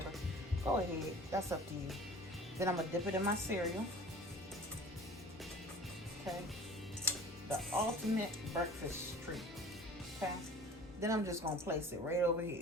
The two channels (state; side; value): normal; both; correlation 0.44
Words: go ahead. That's up to you. Then I'm gonna dip it in my cereal. Okay, the ultimate breakfast treat. Okay, then I'm just gonna place it right over